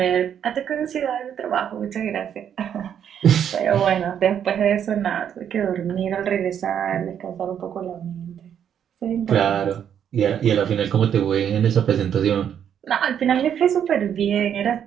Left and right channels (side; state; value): left; quieter; 8.9 dB